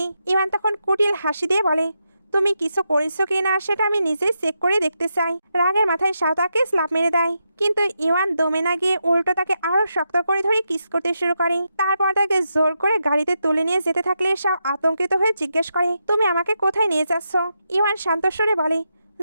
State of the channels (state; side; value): inverted; both; correlation -0.84